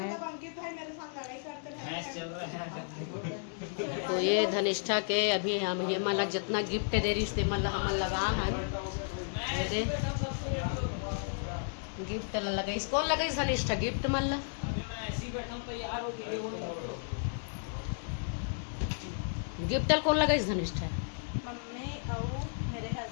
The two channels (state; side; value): silent; right; digital silence